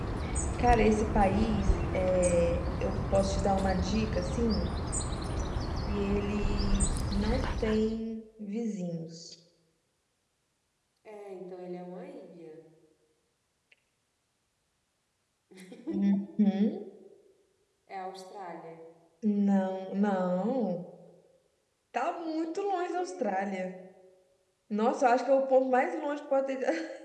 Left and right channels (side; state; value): both; identical; correlation 1.00